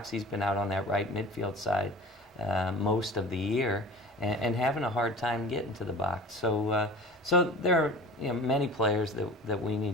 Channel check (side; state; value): both; normal; correlation 0.39